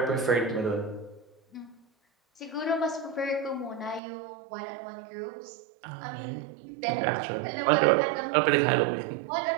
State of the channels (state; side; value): drops out; left; at 4.0 s